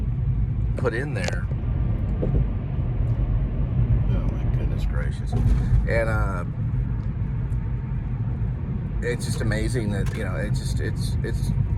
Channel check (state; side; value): identical; both; correlation 1.00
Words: put in there. Gracious. And it's just amazing that, you know,